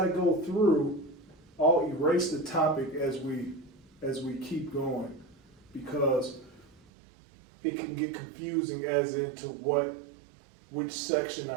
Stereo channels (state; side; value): drops out; left; at 6.8 s